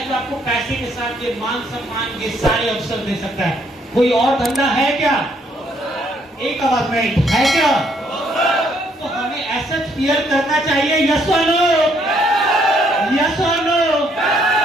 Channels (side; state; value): both; normal; correlation 0.69